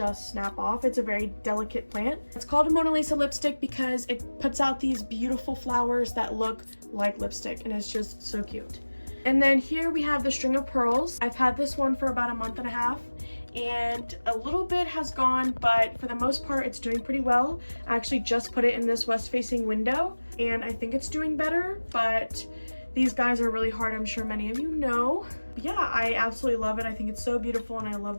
snap off. It's a very delicate plant. It's called a Mona Lisa lipstick because it puts out these beautiful flowers that look like lipstick, and it's just so cute. And then here we have the String of Pearls. I've had this one for about a month and a half, and a little bit has gone, but for the most part it's doing pretty well. I actually just put it in this west-facing window and I think it's doing better, but these guys are really hard, I'm sure many of you know. But yeah, I absolutely love it. I think it's so beautiful and I love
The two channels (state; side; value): inverted; both; correlation -1.00